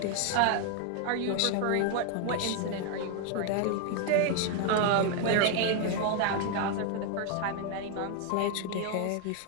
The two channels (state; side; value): different; both; correlation 0.01